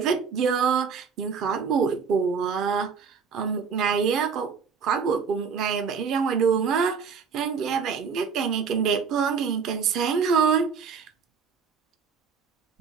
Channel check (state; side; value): quieter; left; 6.0 dB